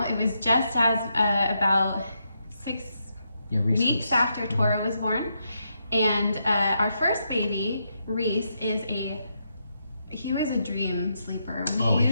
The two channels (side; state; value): both; inverted; correlation -0.81